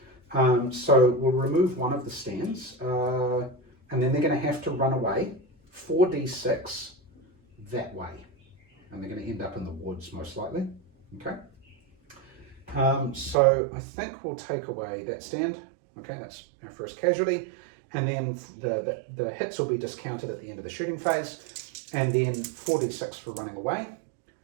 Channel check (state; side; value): drops out; left; at 13.4 s